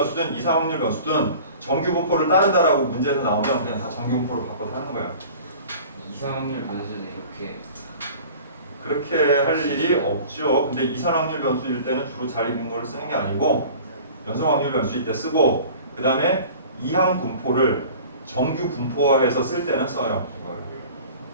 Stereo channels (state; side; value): inverted; both; correlation -0.43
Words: 이상 확률 변수든 정규 분포를 따른다라고 문제에서 나오면 그냥 다 정규 분포로 바꿔서 하는 거야. 이상 확률 변수도 이렇게 그렇게 할 일이 없죠. 근데 이상 확률 변수일 때는 주로 잘 익은 걸 쓰는 게 아니고 연속 확률 변수일 때 쓰고 그 다음에 이항 분포를 정규 분포화해서 쓸 때는 써요. 이걸.